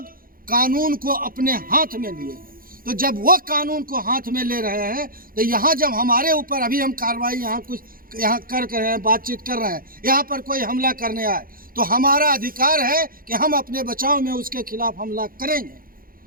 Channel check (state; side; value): late; left; 0.42 ms